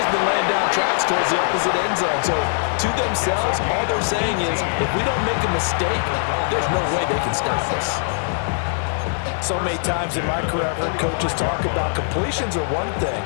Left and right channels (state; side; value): silent; right; digital silence